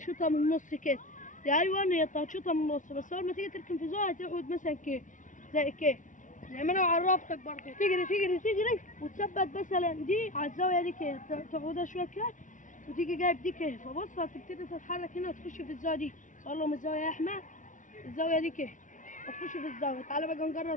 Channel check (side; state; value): right; late; 0.37 ms